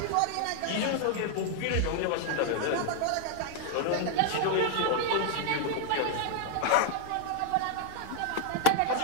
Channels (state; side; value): different; both; correlation 0.00